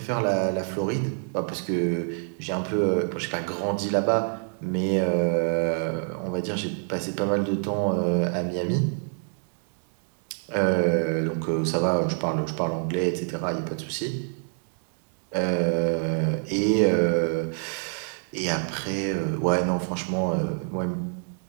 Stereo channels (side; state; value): left; silent; 60 dB below the other